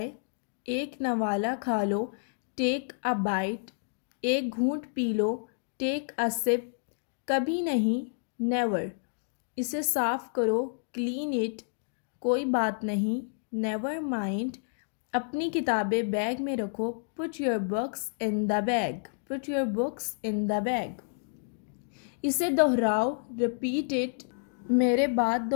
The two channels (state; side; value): silent; right; digital silence